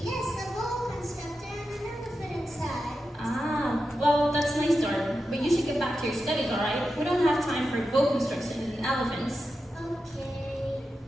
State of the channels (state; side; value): normal; both; correlation 0.90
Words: Yes, a boa constrictor and an elephant inside. Ah, well, that's a nice story. But you should get back to your studies, alright? We don't have time for boa constrictions and elephants. Okay.